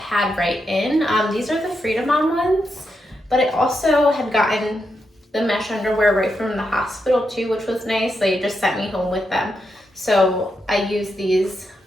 right in. These are the Freedom On ones, but I also had gotten the mesh underwear right from the hospital too, which was nice. They just sent me home with them. So I use these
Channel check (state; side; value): normal; both; correlation 0.84